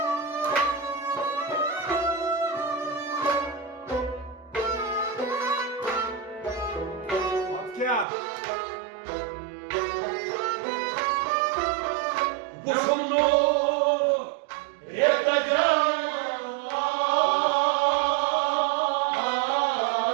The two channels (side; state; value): left; drops out; at 8.1 s